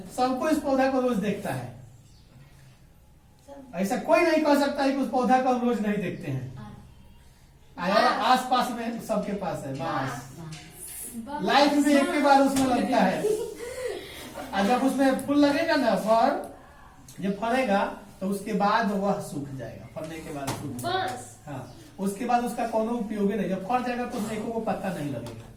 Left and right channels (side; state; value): both; identical; correlation 1.00